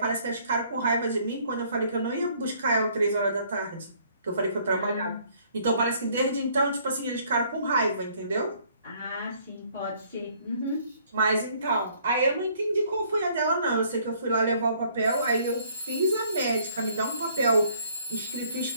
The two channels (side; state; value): both; inverted; correlation -0.62